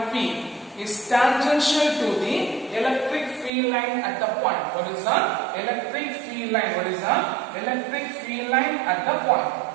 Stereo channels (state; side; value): drops out; left; at 3.5 s